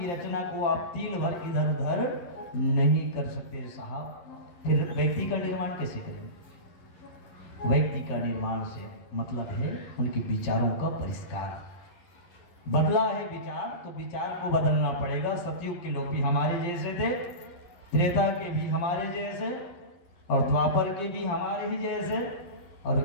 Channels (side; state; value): right; late; 12 ms